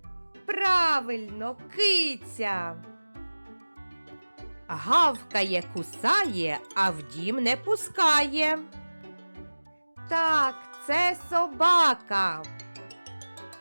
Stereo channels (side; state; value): both; inverted; correlation -1.00